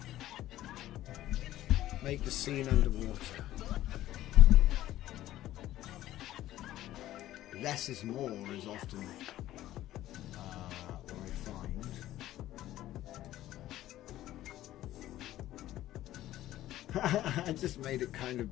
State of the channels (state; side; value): quieter; right; 14.2 dB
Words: Make the scene underwater. Less is more is often what I find. I just made it kind of